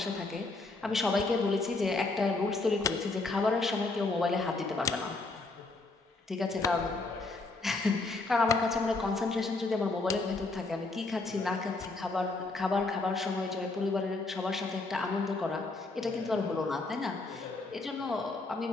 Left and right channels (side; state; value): right; quieter; 3.4 dB